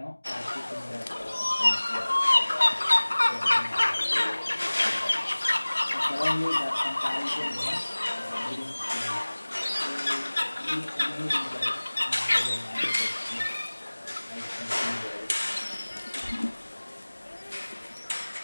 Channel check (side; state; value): both; inverted; correlation -1.00